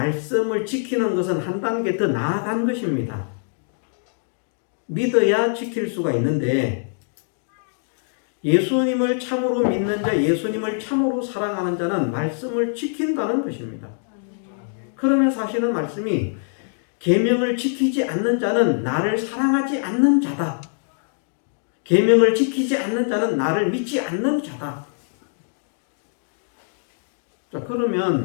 지키는 것은 한 단계 더 나아간 것입니다. 믿어야 지킬 수가 있는데 예수님을 참으로 믿는 자, 예수님을 참으로 사랑하는 자는 말씀을 지킨다는 것입니다. 그러면 사실은 말씀이 계명을 지키지 않는 자는 나를 사랑하지 않는 자다. 계명을 지키지 않는 자는 나를 믿지 않는 자다. 자,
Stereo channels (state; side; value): silent; right; digital silence